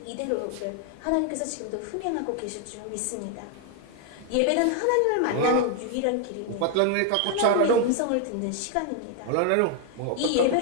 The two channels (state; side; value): different; both; correlation 0.00